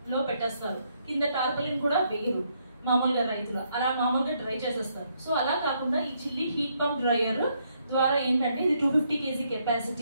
పెట్టేస్తారు, కింద టార్పలిన్ కూడా వేయరు మామూలుగా రైతులు, అలా మామూలుగా డ్రై చేసేస్తారు. సో అలా కాకుండా ఈ చిల్లీ హీట్ పంప్ డ్రైయర్ ద్వారా ఏంటంటే ఇది 250 kg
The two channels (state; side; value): inverted; both; correlation -0.74